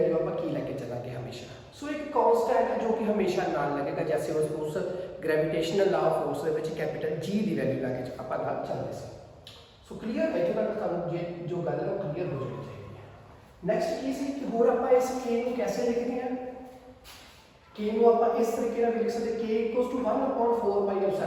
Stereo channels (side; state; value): both; identical; correlation 1.00